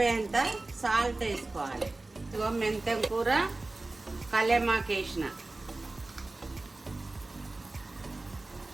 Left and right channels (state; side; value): quieter; left; 3.1 dB